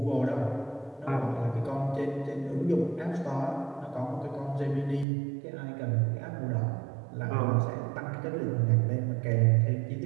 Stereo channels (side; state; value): left; drops out; at 5.1 s